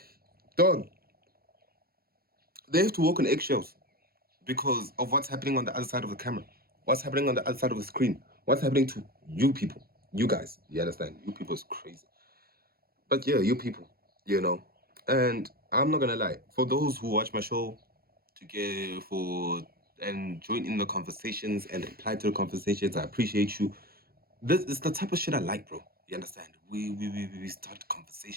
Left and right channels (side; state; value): left; late; 0.44 ms